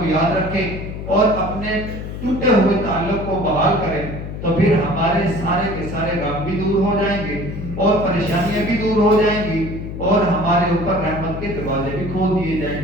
یاد رکھیں اور اپنے ٹوٹے ہوئے تعلق کو بحال کریں، تو پھر ہمارے سارے کے سارے غم بھی دور ہو جائیں گے اور پریشانیاں بھی دور ہو جائیں گی، اور ہمارے اوپر رحمت کے دروازے بھی کھول دیے جائیں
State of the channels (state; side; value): noise; left; hum, 8 dB below the sound